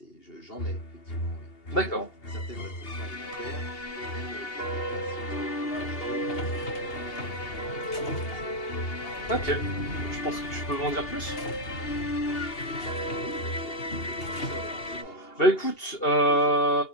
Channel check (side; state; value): right; late; 2.8 ms